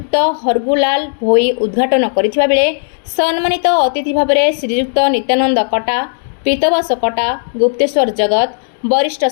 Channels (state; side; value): silent; right; digital silence